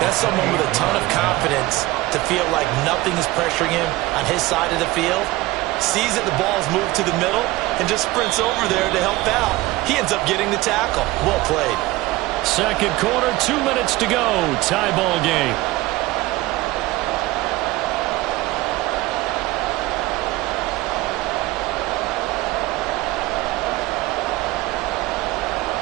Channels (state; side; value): quieter; left; 19.0 dB